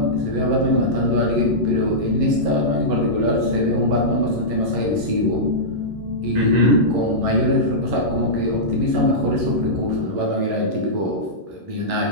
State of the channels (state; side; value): late; left; 11 ms